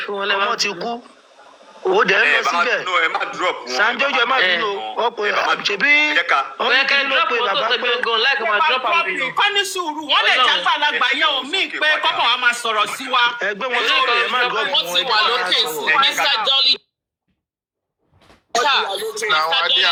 ti kú. Ó dẹ̀ ń lọ síbẹ̀. Sanjojo ẹ má bínú ọ̀pọ̀ ṣebí ọ̀kẹ́ ló pe bàbá pé kọ́ni sùúrù wọ́n lè jẹ́ gbàlagbà yẹn ò mí pé kọ́kọ́ wa máa sọ̀rọ̀ sí wa. Ẹgbẹ́ wọn sọ̀rọ̀ ẹ má gbọ́ fún ẹ wà lókè sí Mr. Dolly. Now I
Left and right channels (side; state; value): both; identical; correlation 1.00